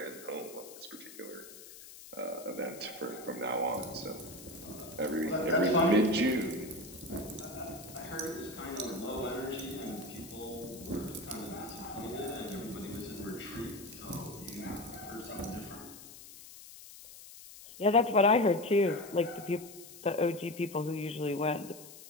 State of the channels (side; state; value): left; noise; hiss, 16 dB below the sound